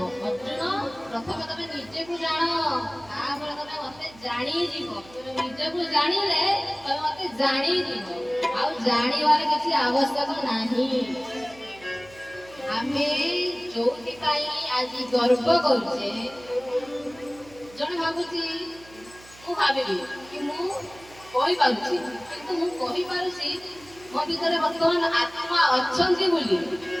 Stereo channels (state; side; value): noise; right; hum, 23 dB below the sound